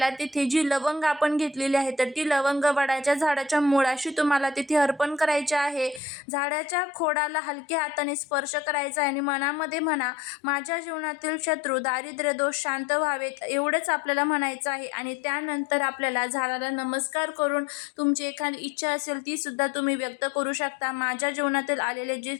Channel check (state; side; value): drops out; right; at 6.0 s